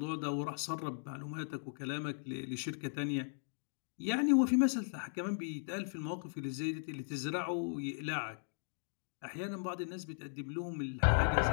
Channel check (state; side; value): silent; right; digital silence